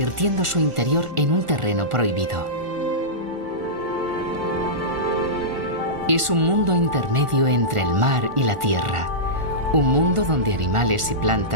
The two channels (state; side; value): late; left; 1.4 ms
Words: su interior en un terreno prohibido. Es un mundo intermedio entre el mar y la tierra, un mundo donde animales y